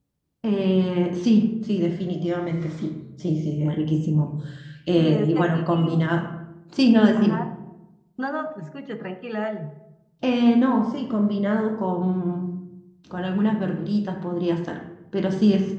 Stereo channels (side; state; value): both; identical; correlation 1.00